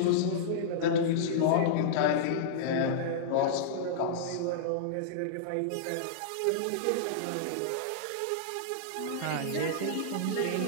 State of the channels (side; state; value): both; different; correlation -0.02